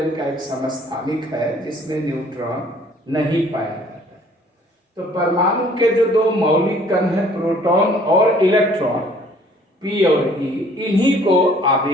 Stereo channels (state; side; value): normal; both; correlation 0.57